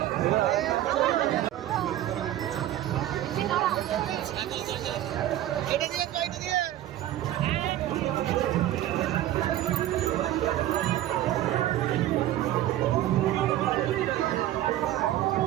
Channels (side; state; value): left; quieter; 13.3 dB